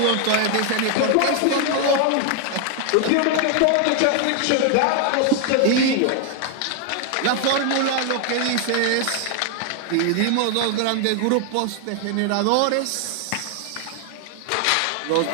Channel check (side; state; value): both; different; correlation 0.00